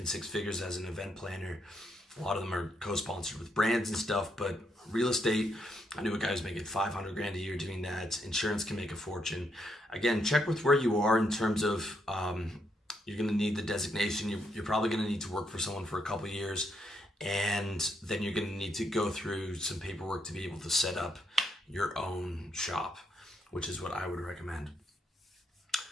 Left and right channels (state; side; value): normal; both; correlation 0.77